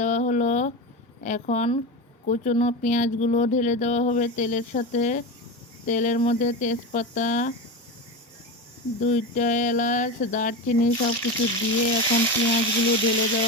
হলো। এখন কুচনো পেঁয়াজগুলো ঢেলে দেওয়া হবে তেলের সাথে। তেলের মধ্যে তেজপাতা, 2টা এলাচ, দারচিনি সব কিছু দিয়ে এখন পেঁয়াজগুলো ঢেলে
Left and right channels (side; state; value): both; normal; correlation 0.22